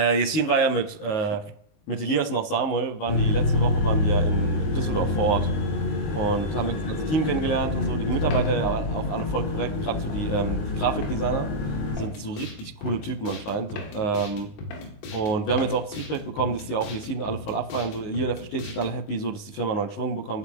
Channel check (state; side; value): late; right; 19 ms